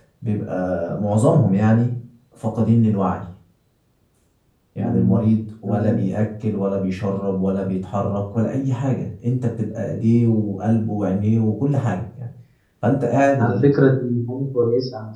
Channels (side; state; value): both; identical; correlation 1.00